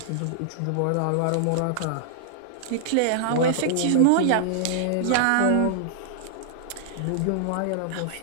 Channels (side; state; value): both; different; correlation -0.01